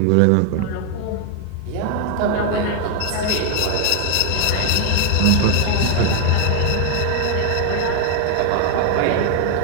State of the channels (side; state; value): both; different; correlation 0.01